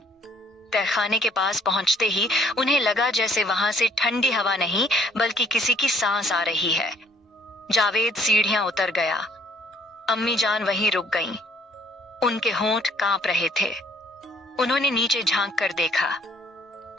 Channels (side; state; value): both; normal; correlation 0.62